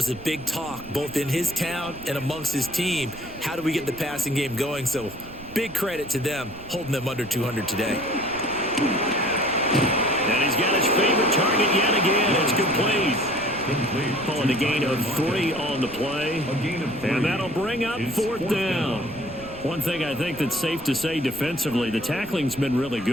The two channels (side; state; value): right; noise; rumble, 18 dB below the sound